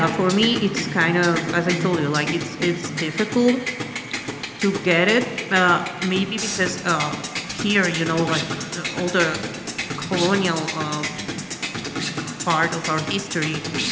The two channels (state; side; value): identical; both; correlation 1.00